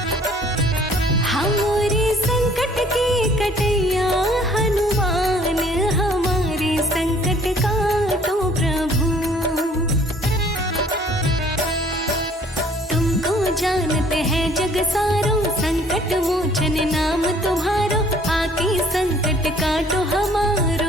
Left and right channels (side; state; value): both; normal; correlation 0.57